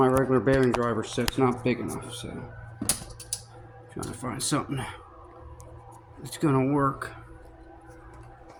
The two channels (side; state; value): both; identical; correlation 1.00